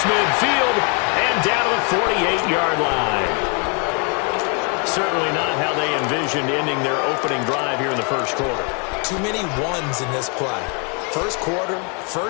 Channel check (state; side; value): quieter; right; 35.3 dB